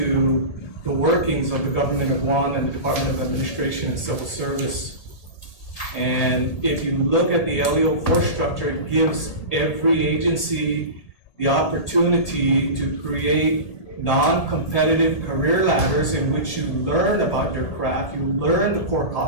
the workings of the government of Guam and the Department of Administration and Civil Service. And if you look at the LEO4 structure, it gives every agency the opportunity to create non-competitive career ladders in which you learn about your craft, you learn the core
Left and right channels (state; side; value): late; right; 1.8 ms